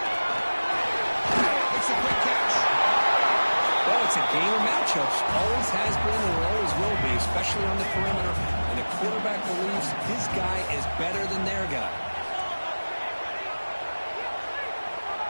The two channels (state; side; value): inverted; both; correlation -1.00